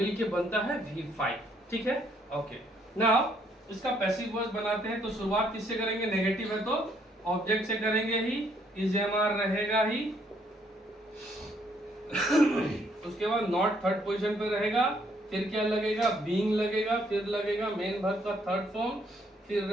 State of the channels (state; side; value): normal; both; correlation 0.69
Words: बनता है V5, ठीक है। ओके, नाउ इसका पैसिव वॉइस बनाते हैं। तो शुरुआत किससे करेंगे? नेगेटिव है तो ऑब्जेक्ट से करेंगे ही, इज एम आर रहेगा ही उसके बाद नॉट थर्ड पोजीशन पे रहेगा, फिर क्या लगेगा? बीइंग लगेगा, फिर लगेगा मेन वर्ब का थर्ड फॉर्म, फिर